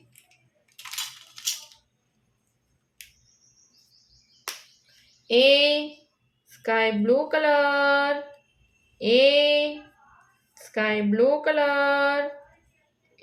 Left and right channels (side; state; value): both; identical; correlation 1.00